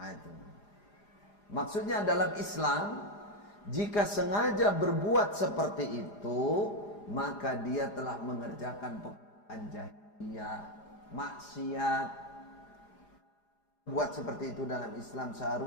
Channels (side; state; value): right; late; 4.9 ms